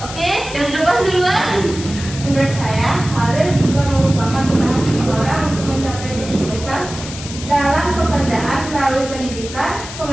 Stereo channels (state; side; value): noise; left; hiss, 11 dB below the sound